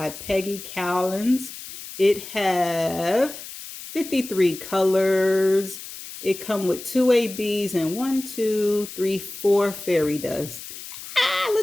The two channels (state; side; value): noise; left; hiss, 12 dB below the sound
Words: Peggy Cowlins. It have 53 colors. It come with 2 ABs and 1, 2, 3, 4 fairy dust. Ah,